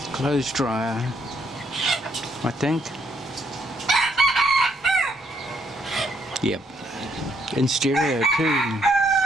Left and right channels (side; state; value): both; normal; correlation 0.72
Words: Clothes dryer, I think. Yep. In stereo too.